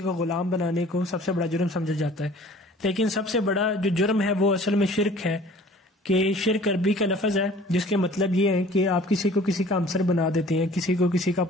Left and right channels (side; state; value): both; normal; correlation 0.49